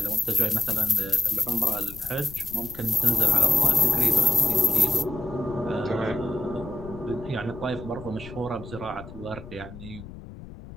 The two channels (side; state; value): left; noise; rumble, 15 dB below the sound